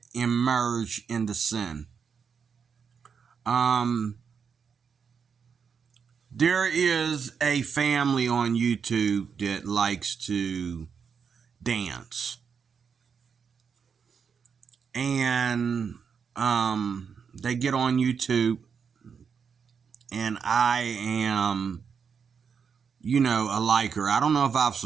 emerge into sin. There is a family on YouTube that likes to dance. And they get on YouTube, and I am, a liker. I don't know if I've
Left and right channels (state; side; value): quieter; left; 6.4 dB